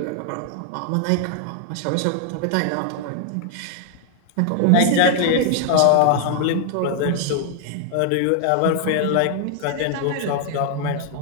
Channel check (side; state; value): both; different; correlation 0.00